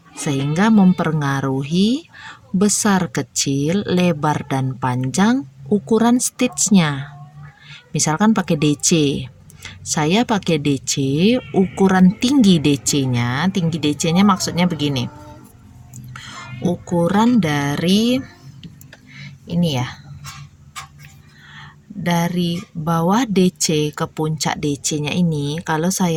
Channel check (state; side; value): identical; both; correlation 1.00